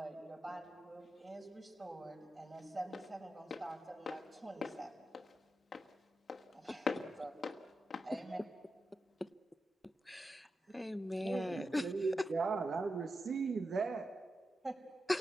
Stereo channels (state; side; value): normal; both; correlation 0.89